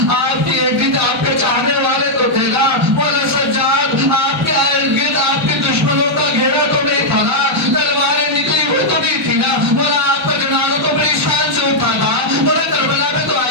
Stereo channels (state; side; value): normal; both; correlation -0.04